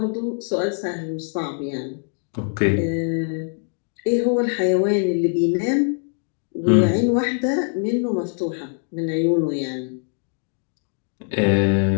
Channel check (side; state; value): right; silent; 56 dB below the other